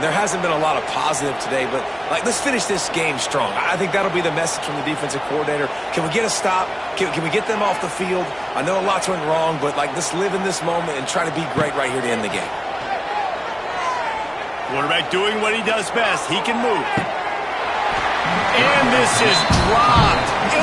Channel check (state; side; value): identical; both; correlation 1.00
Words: there hasn't been a lot of positive today, but let's finish this game strong. I think that'll be the message from the defensive coordinator. Can we get a stop? Can we get them off the field? I know a lot's went wrong, but let's live in this moment and try to be great right here to end the game. Quarterback doing what he does best. He can move. And this is dropped.